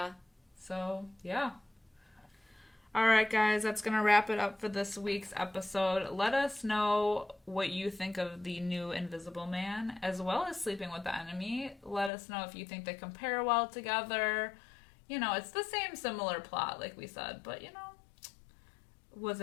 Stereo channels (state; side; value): drops out; right; at 12.1 s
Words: So, yeah. Alright, guys, that's going to wrap it up for this week's episode. Let us know what you think of the new Invisible Man, as well as Sleeping with the Enemy. Let us know if you think they compare well together. It's the same similar plot, like we said, but, was